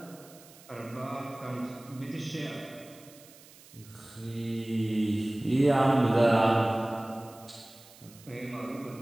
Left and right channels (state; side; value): noise; right; hiss, 22 dB below the sound